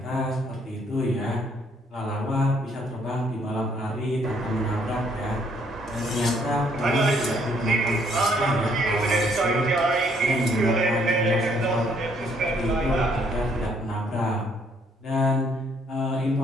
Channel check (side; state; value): both; normal; correlation 0.67